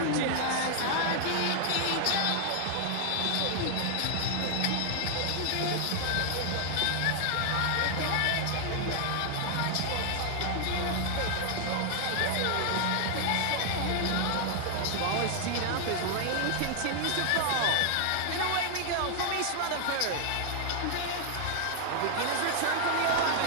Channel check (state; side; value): different; both; correlation 0.00